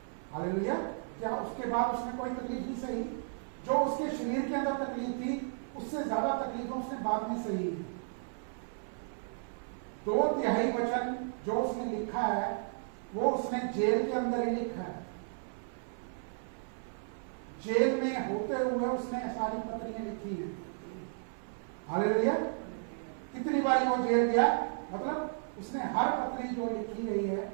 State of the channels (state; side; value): silent; left; 55 dB below the other